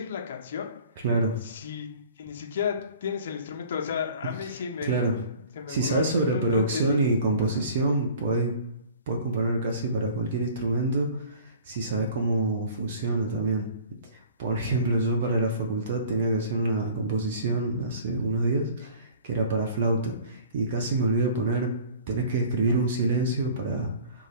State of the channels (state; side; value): inverted; both; correlation -0.47